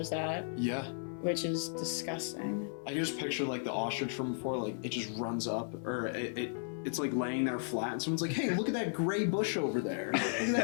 that, Yeah. which is disgusting. I can just picture like the ostrich from before, like it just runs up, or it's like laying there flat, and someone's like, "Hey, look at that gray bush over there. Look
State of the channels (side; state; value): right; silent; 54 dB below the other